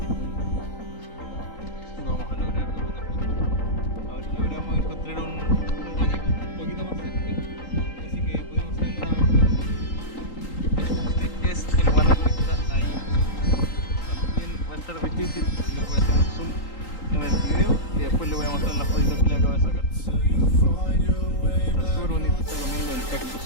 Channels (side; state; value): right; late; 3.8 ms